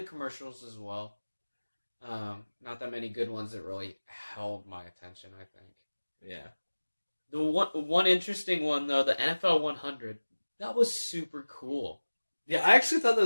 the commercials as well. Not that many good ones that really held my attention, I think. Yeah. The one interesting one though, the NFL 100, that was super cool. Yeah, I actually thought that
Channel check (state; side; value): inverted; both; correlation -1.00